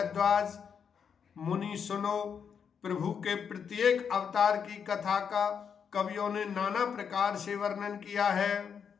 मुनि सुनो, प्रभु के प्रत्येक अवतार की कथा का कवियों ने नाना प्रकार से वर्णन किया है।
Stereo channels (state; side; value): quieter; right; 7.0 dB